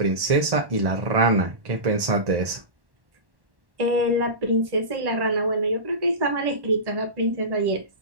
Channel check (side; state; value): left; late; 1.1 ms